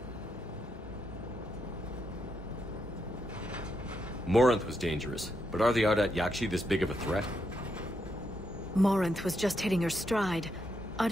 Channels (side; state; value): both; normal; correlation 0.81